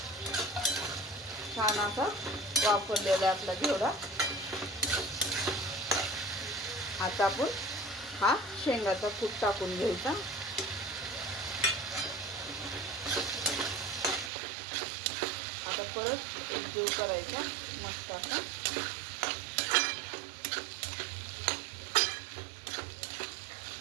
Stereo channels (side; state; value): left; drops out; at 14.3 s